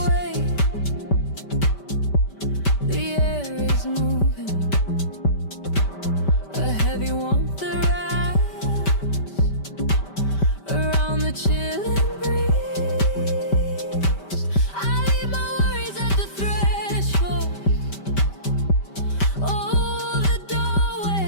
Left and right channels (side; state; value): right; late; 5.1 ms